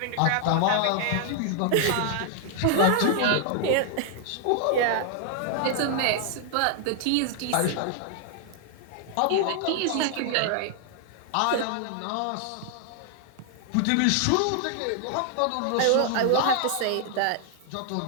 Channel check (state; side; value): different; both; correlation 0.00